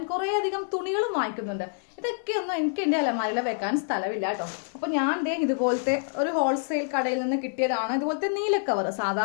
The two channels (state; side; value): silent; right; digital silence